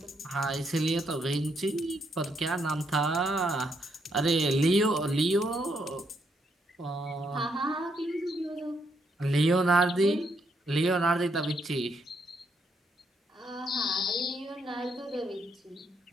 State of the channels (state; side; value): normal; both; correlation 0.76